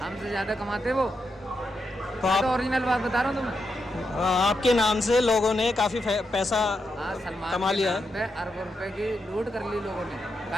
हमसे ज़्यादा कमाते वो। तो मैं तो आप ओरिजिनल बात बता रहा हूँ तुम्हें। आपके नाम से लोगों ने काफ़ी पैसा हाँ, सलमान कमा के लिया नाम पे अरबों रुपए की लूट कर ली लोगों ने।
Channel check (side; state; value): both; normal; correlation 0.84